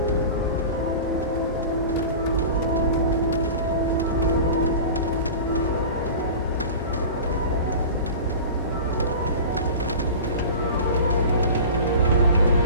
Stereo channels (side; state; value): both; inverted; correlation -0.35